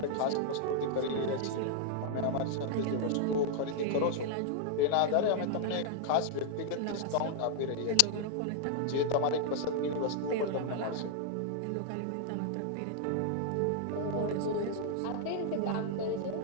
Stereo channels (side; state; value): both; different; correlation -0.01